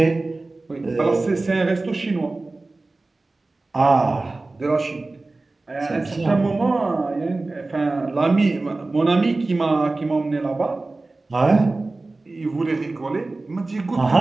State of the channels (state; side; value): quieter; left; 3.2 dB